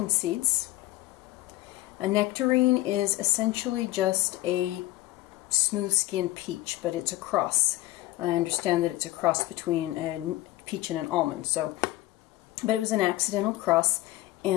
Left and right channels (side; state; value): right; quieter; 17.0 dB